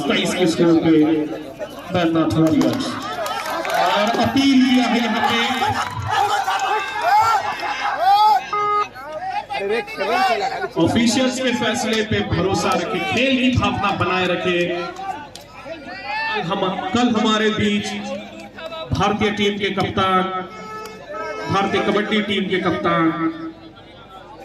23 के स्कोर पे बैजनाथ वॉरियर्स। और अपील किया है यहाँ पे ऑफिशियल्स के फैसले पे भरोसा रखे, खेल की भावना बनाए रखे। कल हमारे बीच भारतीय टीम के कप्तान, भारतीय कबड्डी टीम के कप्तान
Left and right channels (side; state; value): both; identical; correlation 1.00